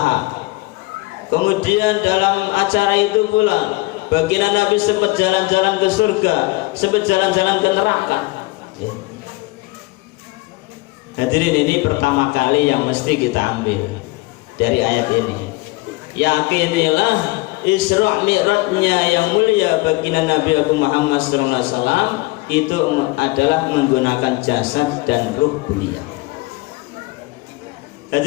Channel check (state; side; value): quieter; right; 22.5 dB